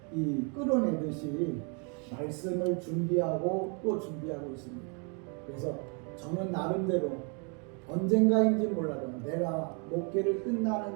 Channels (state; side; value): quieter; left; 36.1 dB